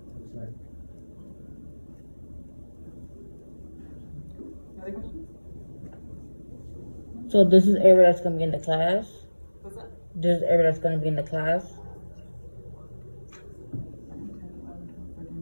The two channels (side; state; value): both; inverted; correlation -1.00